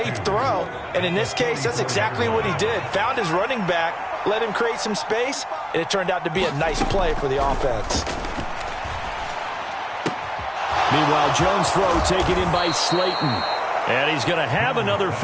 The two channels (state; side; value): identical; both; correlation 1.00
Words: throw. And in this case, that's exactly what he did. Found his running back, let him create some space, and it turned out to be a nice play for the offense. Meanwhile, Jones' throw taken in by Slayton. And he's going to have another